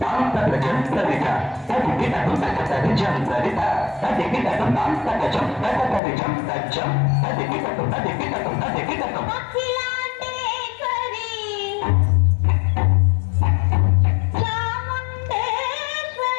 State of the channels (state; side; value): drops out; right; at 6.0 s